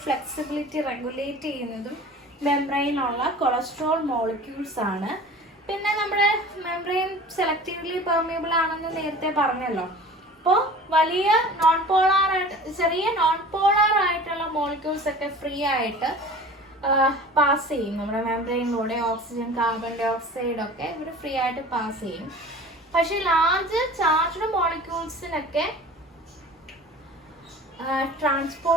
ഫ്ലെക്സിബിലിറ്റി റെഗുലേറ്റ് ചെയ്യുന്നതും മെംബ്രെയിനുള്ള കൊളസ്ട്രോൾ മോളിക്യൂൾസ് ആണ്. പിന്നെ നമ്മുടെ മെംബ്രെയിൻ സെലക്റ്റീവ്ലി പെർമിയബിൾ ആണെന്ന് നേരത്തെ പറഞ്ഞല്ലോ. അപ്പോൾ വലിയ ചെറിയ നോൺ പോളാർ ആയിട്ടുള്ള മോളിക്യൂൾസ് ഒക്കെ ഫ്രീ ആയിട്ട് പാസ് ചെയ്യും. നമ്മുടെ മെംബ്രെയിനിലൂടെ ഓക്സിജൻ, കാർബൺ ഡൈ ഓക്സൈഡ് ഒക്കെ ഇവർ ഫ്രീ ആയിട്ട് പാസ് ചെയ്യും. പക്ഷെ ലാർജ് ചാർജ്ഡ് മോളിക്യൂൾസിനൊക്കെ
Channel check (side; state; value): both; normal; correlation 0.41